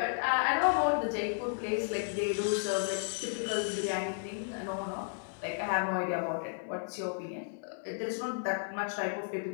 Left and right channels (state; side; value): silent; right; digital silence